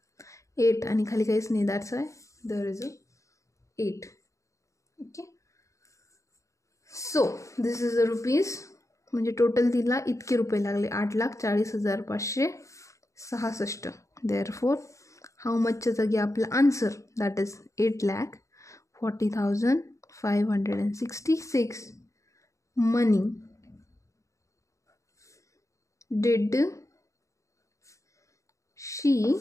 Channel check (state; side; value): late; right; 0.15 ms